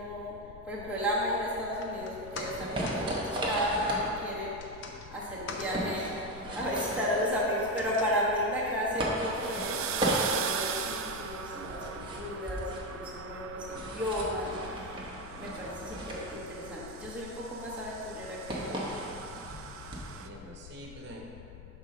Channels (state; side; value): noise; left; rumble, 15 dB below the sound